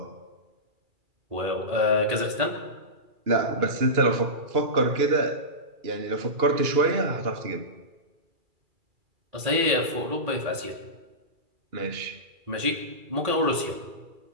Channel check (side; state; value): left; late; 2.3 ms